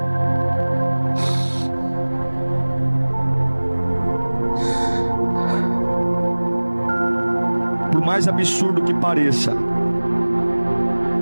Por mais absurdo que pareça,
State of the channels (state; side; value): inverted; both; correlation -1.00